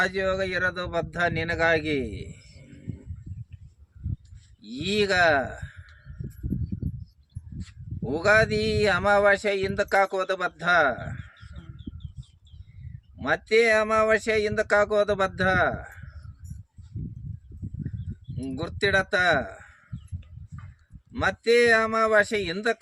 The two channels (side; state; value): both; identical; correlation 1.00